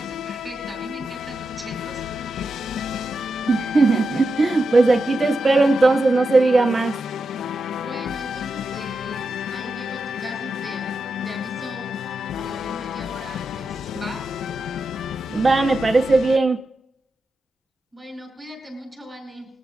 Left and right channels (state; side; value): normal; both; correlation 0.88